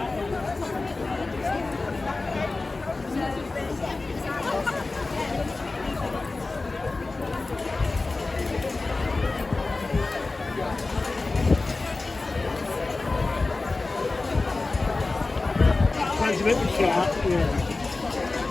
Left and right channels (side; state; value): right; quieter; 3.4 dB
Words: Sounds a bit sharp, yeah.